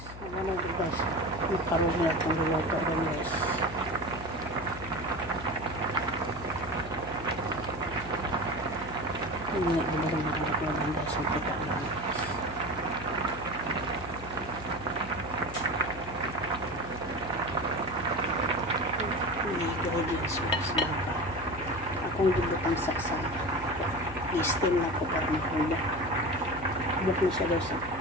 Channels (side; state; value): left; noise; hum, 13 dB below the sound